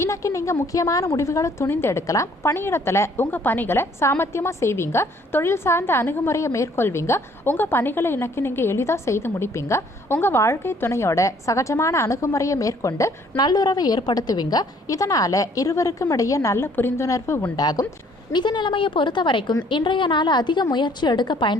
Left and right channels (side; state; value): both; normal; correlation 0.61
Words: இன்னைக்கு நீங்க முக்கியமான முடிவுகளை துணிந்து எடுக்கலாம். பணியிடத்துல உங்க பணிகளை சாமர்த்தியமா செய்வீங்க. தொழில் சார்ந்த அணுகுமுறையை மேற்கொள்வீங்க. உங்க பணிகளை இன்னைக்கு நீங்க எளிதா செய்து முடிப்பீங்க. உங்க வாழ்க்கை துணையோட சகஜமான அணுகுமுறையை மேற்கொண்டு நல்லுறவை ஏற்படுத்துவீங்க. இதனால இருவருக்கும் இடையே நல்ல புரிந்துணர்வு உண்டாகும். நிதி நிலைமையை பொறுத்த வரைக்கும் இன்றைய நாள் அதிக முயற்சி எடுக்க